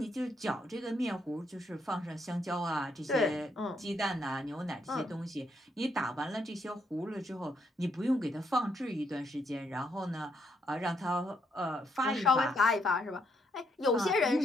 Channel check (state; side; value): normal; both; correlation 0.75